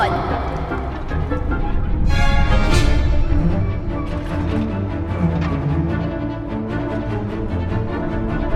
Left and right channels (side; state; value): both; identical; correlation 1.00